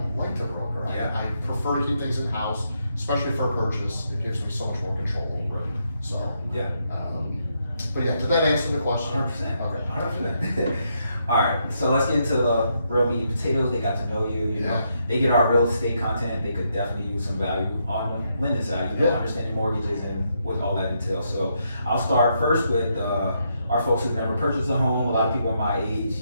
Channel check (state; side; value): inverted; both; correlation -0.78